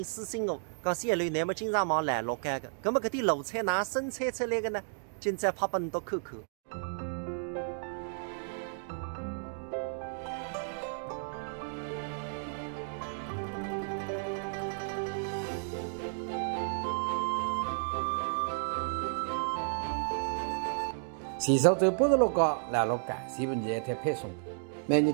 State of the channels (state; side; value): silent; left; digital silence